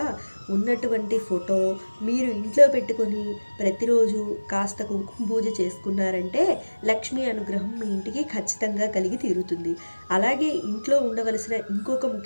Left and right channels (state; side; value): inverted; both; correlation -1.00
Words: ఉన్నటువంటి ఫోటో మీరు ఇంట్లో పెట్టుకొని ప్రతిరోజు కాస్త కుంకుమ పూజ చేసుకున్నారంటే లక్ష్మీ అనుగ్రహం మీ ఇంటికి ఖచ్చితంగా కలిగి తీరుతుంది. అలాగే ఇంట్లో ఉండవలసిన ఇంకొక